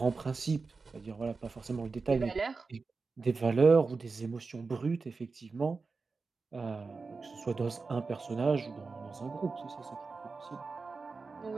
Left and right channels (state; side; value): quieter; left; 4.3 dB